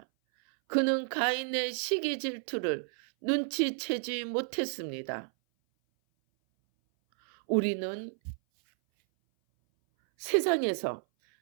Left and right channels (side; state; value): left; silent; 57 dB below the other